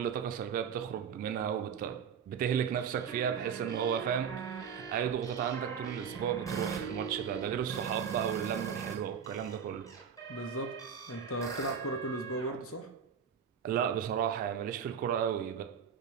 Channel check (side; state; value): left; quieter; 7.3 dB